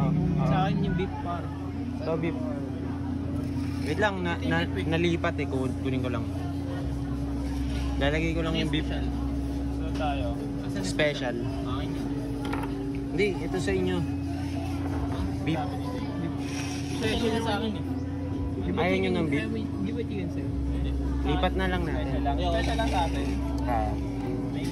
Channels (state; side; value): identical; both; correlation 1.00